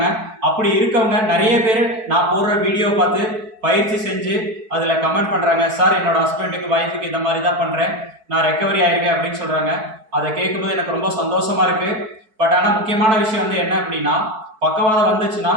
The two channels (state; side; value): late; left; 4.6 ms